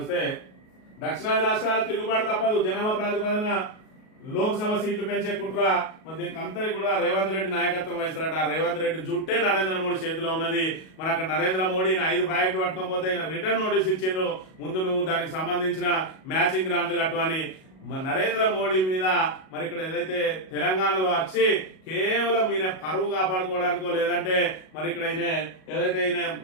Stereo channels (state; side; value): late; right; 38 ms